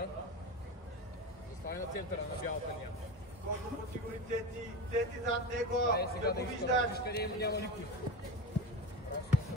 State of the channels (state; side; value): normal; both; correlation 0.24